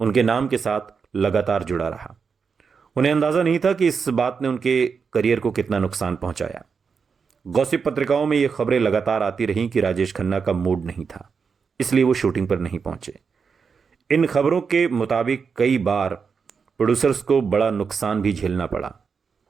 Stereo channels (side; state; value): left; quieter; 5.8 dB